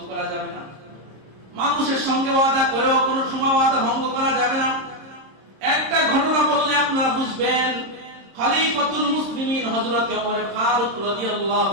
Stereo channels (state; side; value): late; left; 26 ms